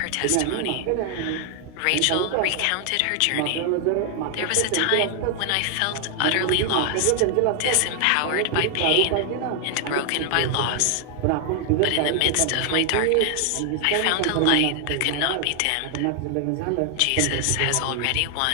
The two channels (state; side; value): different; both; correlation 0.00